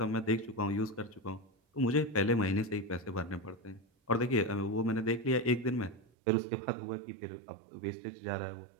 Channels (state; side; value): drops out; left; at 6.1 s